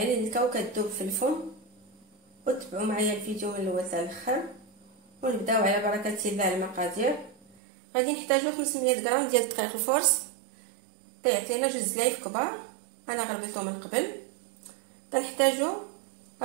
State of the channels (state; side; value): drops out; left; at 7.6 s